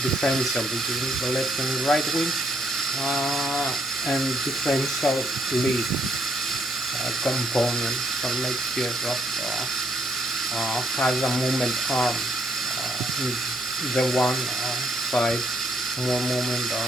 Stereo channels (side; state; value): both; normal; correlation 0.71